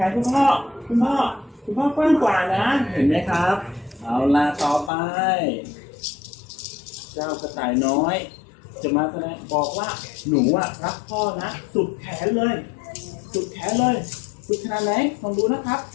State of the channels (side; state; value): right; drops out; at 4.9 s